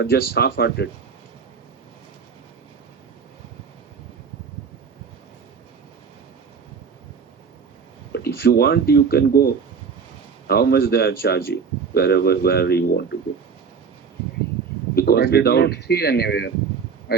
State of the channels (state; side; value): quieter; left; 6.0 dB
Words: just half-hearted. But if you want, you can go. How much they are charging, wherever you want to go. Because I did not see anywhere. I